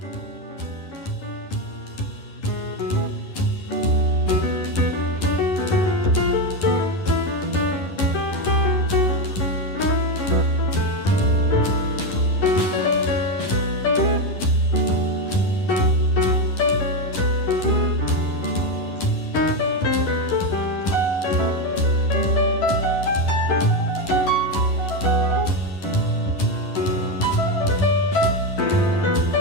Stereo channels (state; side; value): late; right; 11 ms